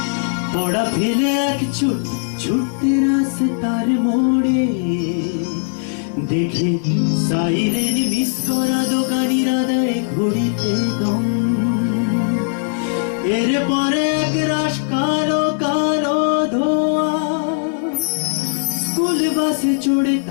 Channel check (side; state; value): right; silent; digital silence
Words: পড়া ফেলে এক ছুটতে রাস্তার মোড়ে, দেখে সাইরেন মিস করা দোকানিরা দেয় ঘড়িতে দম। এরপরে এক রাশ কালো কালো ধোয়া, স্কুল বাসে চড়ে